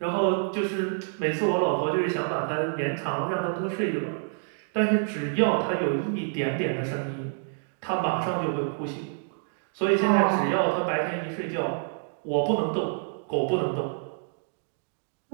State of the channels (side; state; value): left; silent; digital silence